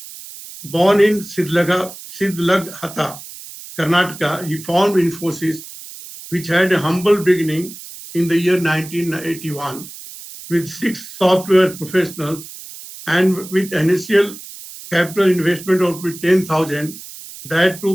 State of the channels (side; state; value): right; noise; hiss, 15 dB below the sound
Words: Born in Sidlaghata, Karnataka, he founded Infosys, which had a humble beginning in the year 1981 with 6 software professionals and with initial capital investment of 10,000, that